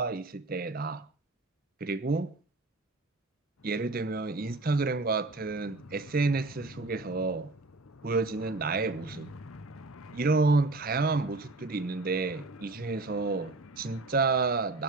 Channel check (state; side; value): quieter; left; 3.2 dB